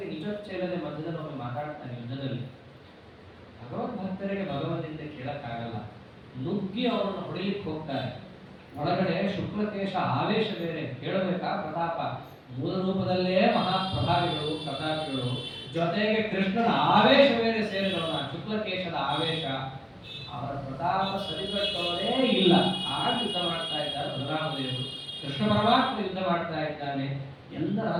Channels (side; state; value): both; identical; correlation 1.00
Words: ನಿಜೋಚ್ಚ ಇಲ್ಲದೆ ಮಧ್ಯದಲ್ಲಿ ಒಮ್ಮೆ ಮಾತಾಡ್ತಾನೆ ಯುದ್ಧದಲ್ಲಿ. ಭಗವದ್ ಭಕ್ತರಿಗೆ ಭಗವಂತನಿಂದ ಕೇಳಕ್ಕಾಗಲ್ಲ. ನುಗ್ಗಿ ಅವನನ್ನು ಹೊಡಿಲಿಕ್ಕೆ ಹೋಗ್ತಾರೆ. ಒಳಗಡೆ ಶುಕ್ಲಕೇಶ ಆವೇಶ ಬೇರೆ, ಕೇಳಬೇಕಾ ಪ್ರತಾಪ. ಮೂಲ ರೂಪದಲ್ಲೇ ಮಹಾಪ್ರಭಾವಿಗಳು ಪ್ರತಾಪಿಗಳು, ಜೊತೆಗೆ ಕೃಷ್ಣನ ಆವೇಶ ಬೇರೆ ಸೇರಿದವನ ಶುಕ್ಲಕೇಶದ ಆವೇಶ. ಅವರ ಪ್ರತಾಪ ಸರಿಗಟ್ಟೋದೇ ಇಲ್ಲ. ಆಗ ಯುದ್ಧ ಮಾಡ್ತಾ ಇದ್ದಾರೆ ಬಲರಾಮದೇವರು. ಕೃಷ್ಣ ಪರಮಾತ್ಮ ಯುದ್ಧ ಮಾಡ್ತಾ ಇದ್ದಾನೆ. ಎಲ್ಲ